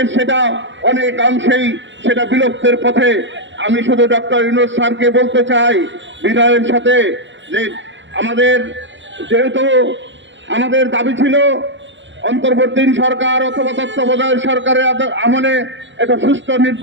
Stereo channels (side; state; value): left; late; 0.54 ms